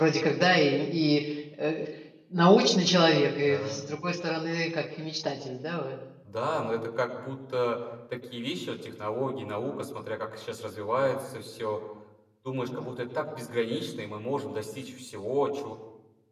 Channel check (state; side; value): identical; both; correlation 1.00